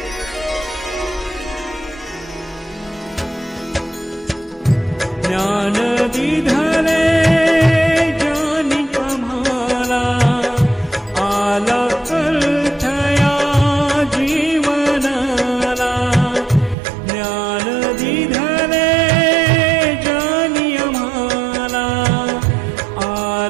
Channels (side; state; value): left; drops out; at 16.8 s